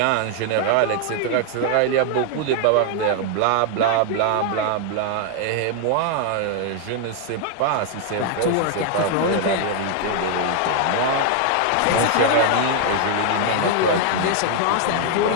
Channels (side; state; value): both; different; correlation 0.00